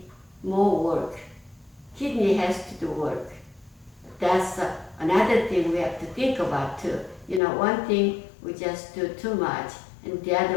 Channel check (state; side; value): drops out; right; at 7.4 s